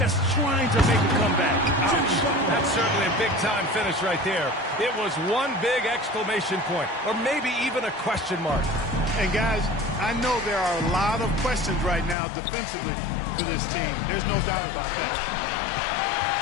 trying to make a comeback. Ouch. That's certainly a big-time finish right there. It was one big exclamation point, or maybe even a question mark. And guys, I know there are a lot of questions right now defensively for this team. There's no doubt about that.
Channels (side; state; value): right; drops out; at 12.2 s